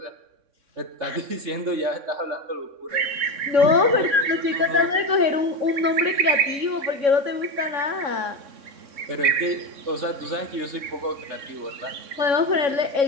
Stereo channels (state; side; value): late; left; 3.6 ms